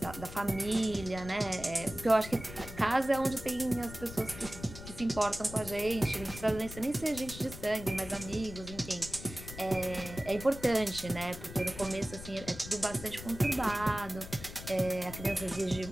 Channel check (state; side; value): noise; left; rumble, 12 dB below the sound